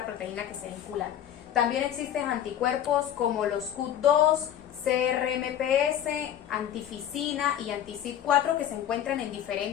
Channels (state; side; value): quieter; right; 10.5 dB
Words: proteína que se vincula. También existen anticuerpos como los CUT2, CRMPS, antificina y anti-CYP4 que se encuentran en